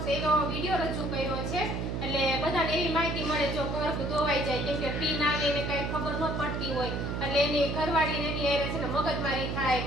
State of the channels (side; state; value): right; noise; hum, 2 dB below the sound